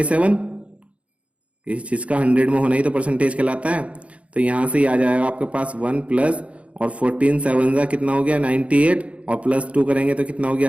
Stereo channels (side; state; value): left; late; 0.063 ms